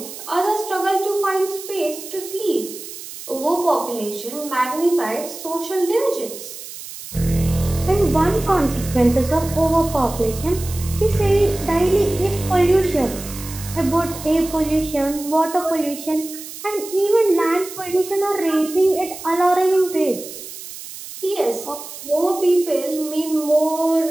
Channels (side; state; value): right; noise; hiss, 12 dB below the sound